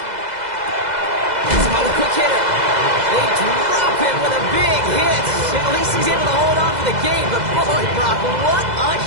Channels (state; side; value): late; left; 2.0 ms